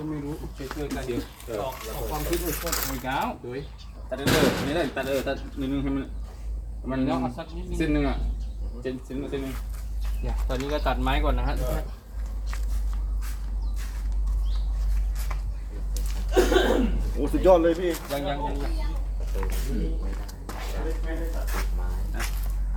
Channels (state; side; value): identical; both; correlation 1.00